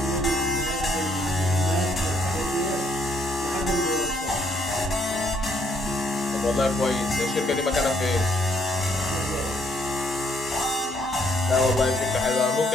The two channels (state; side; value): normal; both; correlation 0.69